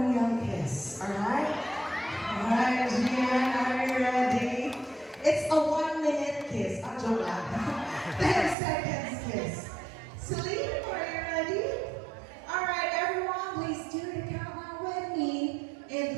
kiss. Alright? Alright, Gian, are you ready? It's a 1-minute kiss. Ah, joke lang. 10 seconds kiss. Celine, are you ready? Alright, everyone, please do the countdown with me. In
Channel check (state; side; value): drops out; left; at 8.6 s